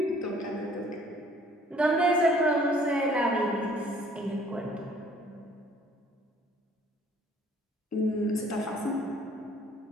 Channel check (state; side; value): normal; both; correlation 0.57